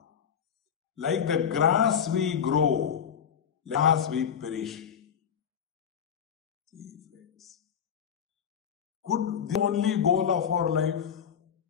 Like the grass we grow, grass we perish. See, friends. Could the only goal of our life?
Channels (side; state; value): right; quieter; 7.9 dB